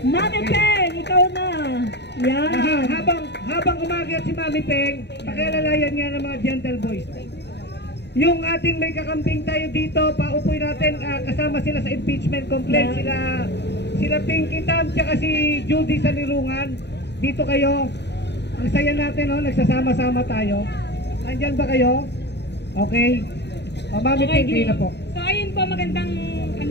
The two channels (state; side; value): late; right; 0.50 ms